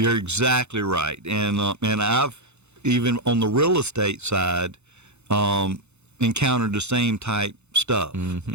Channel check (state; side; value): late; left; 0.81 ms